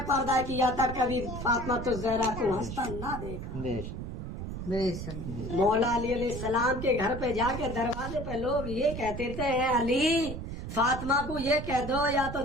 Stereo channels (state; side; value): noise; right; rumble, 7 dB below the sound